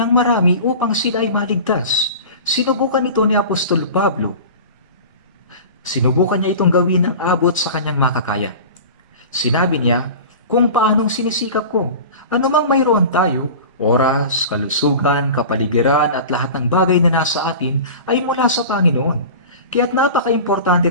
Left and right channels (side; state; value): both; inverted; correlation -0.35